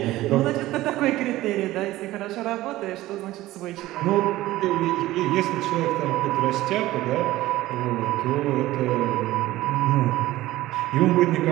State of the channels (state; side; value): quieter; left; 16.6 dB